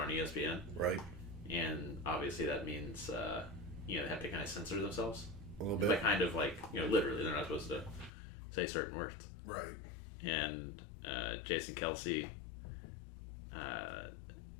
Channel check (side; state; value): right; drops out; at 8.1 s